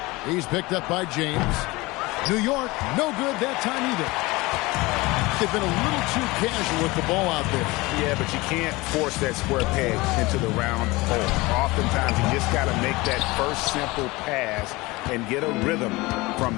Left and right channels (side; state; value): right; quieter; 22.1 dB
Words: He's picked up by James. New York, no good that time either. They've been a little too casual with the ball out there. Yeah, but you can't force that square peg into the round hole. Oftentimes, you just got to make that first simple pass and get a rhythm